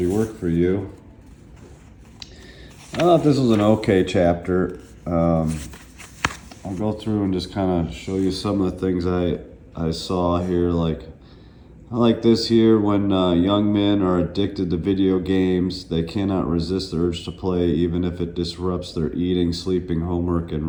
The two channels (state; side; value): identical; both; correlation 1.00